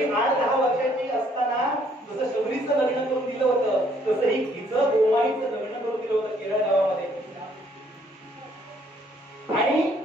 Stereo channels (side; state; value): both; normal; correlation 0.65